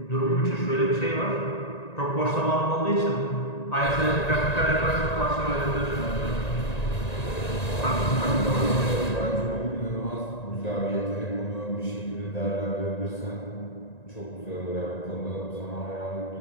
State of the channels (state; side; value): late; right; 1.9 ms